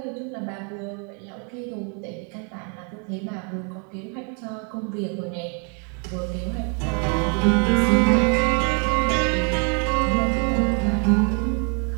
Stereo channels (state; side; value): quieter; left; 36.1 dB